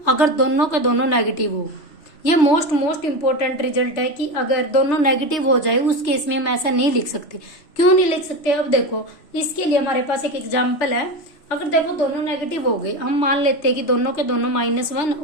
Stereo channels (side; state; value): right; late; 3.0 ms